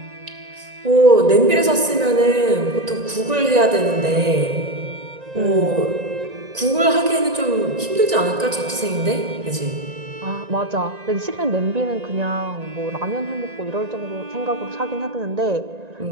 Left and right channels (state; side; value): late; left; 1.9 ms